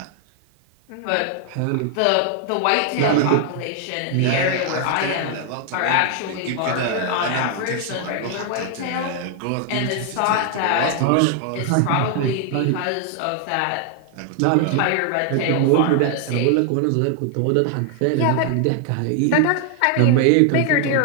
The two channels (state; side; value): different; both; correlation 0.00